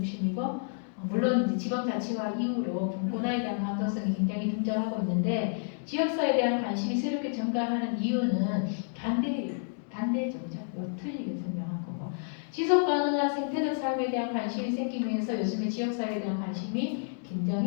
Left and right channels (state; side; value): silent; right; digital silence